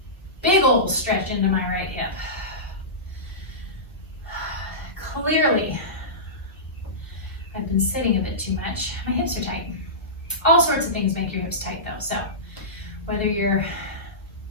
big old stretch into my right hip. Clearly, I've been sitting a bit too much. My hips are tight. All sorts of things make your hips tight though, so whether you're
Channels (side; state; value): both; normal; correlation -0.20